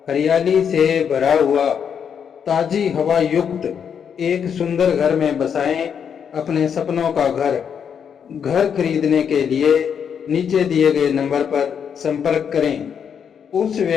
हरियाली से भरा हुआ, ताजी हवा युक्त एक सुंदर घर में बसाएं अपने सपनों का घर। घर खरीदने के लिए नीचे दिए गए नंबर पर संपर्क करें। उस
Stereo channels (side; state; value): right; quieter; 7.5 dB